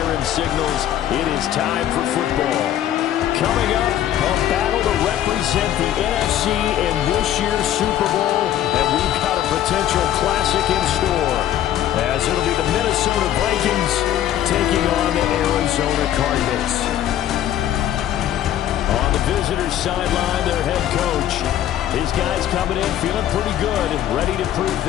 signals it is time for football. Coming up, a battle to represent the NFC in this year's Super Bowl, and we've got a potential classic in store, as it'll be the Minnesota Vikings taking on the Arizona Cardinals. On the visitors' sideline, their head coach. His guys coming in feeling pretty good and ready to prove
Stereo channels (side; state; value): right; quieter; 11.7 dB